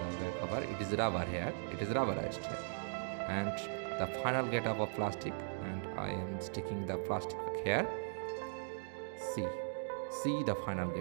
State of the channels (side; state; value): left; silent; digital silence